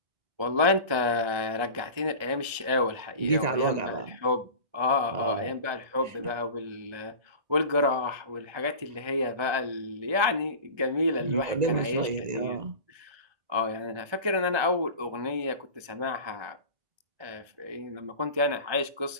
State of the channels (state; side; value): late; left; 1.3 ms